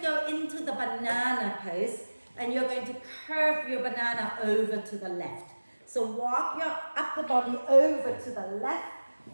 into the banana pose, and you're going to curve your banana over to the left. So walk your upper body over to the left,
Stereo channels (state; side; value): inverted; both; correlation -1.00